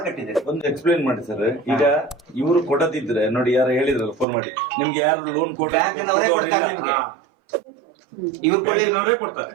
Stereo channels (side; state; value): left; drops out; at 4.2 s